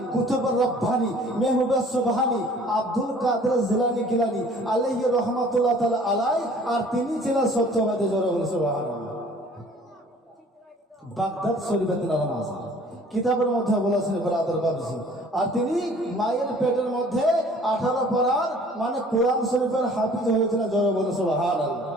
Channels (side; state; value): both; normal; correlation 0.52